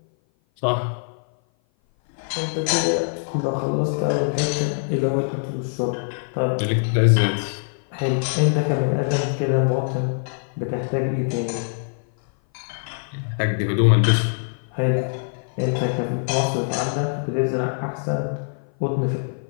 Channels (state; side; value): silent; right; 57 dB below the other